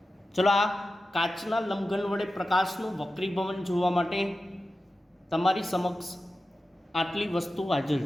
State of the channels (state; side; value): normal; both; correlation 0.93